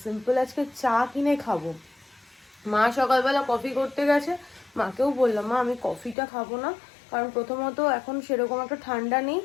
সিম্পল আজকে চা কিনে খাবো। মা সকালবেলা কফি করতে গেছে, মাকেও বললাম মা আমি কফিটা খাবো না, কারণ প্রথমত এখন সেরকম একটা ঠান্ডা নেই,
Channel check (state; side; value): drops out; right; at 6.2 s